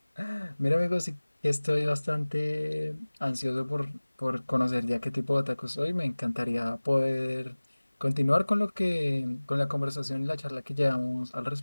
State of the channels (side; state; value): both; inverted; correlation -1.00